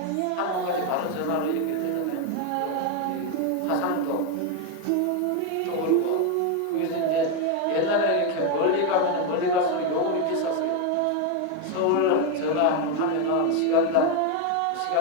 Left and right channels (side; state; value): both; different; correlation 0.02